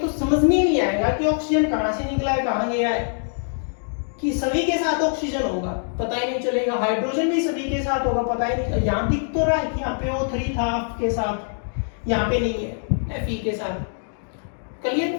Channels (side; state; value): right; silent; digital silence